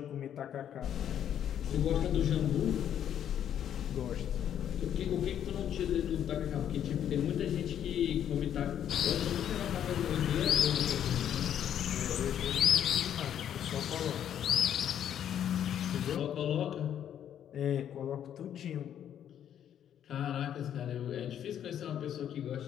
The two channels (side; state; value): right; quieter; 9.8 dB